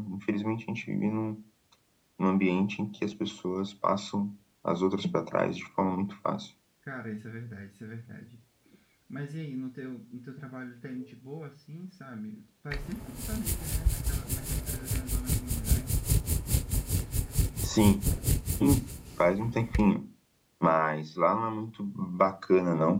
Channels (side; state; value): both; identical; correlation 1.00